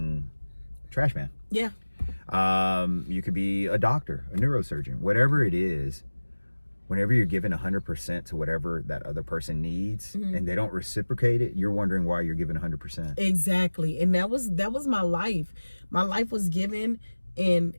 trash man. Yeah. You could be a doctor, a neurosurgeon, whatever it is. Whenever you're giving 100% to whatever that other person needs, and they don't reciprocate it, you're wondering why you're giving 100%. Exactly. And that was my life. My life was given, and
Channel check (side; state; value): both; inverted; correlation -1.00